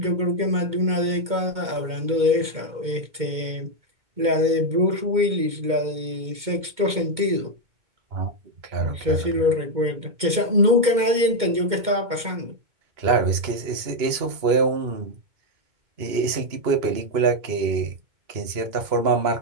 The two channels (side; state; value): left; late; 2.1 ms